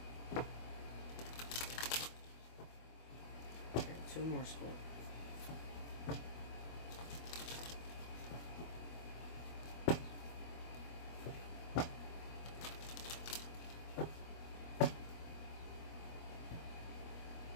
Okay, two more Scorpio.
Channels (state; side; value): late; right; 24 ms